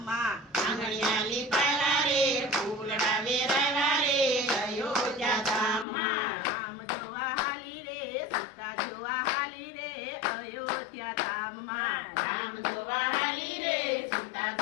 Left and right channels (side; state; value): right; drops out; at 5.9 s